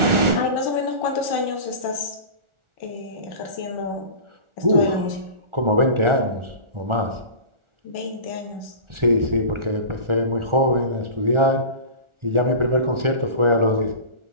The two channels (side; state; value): left; late; 1.4 ms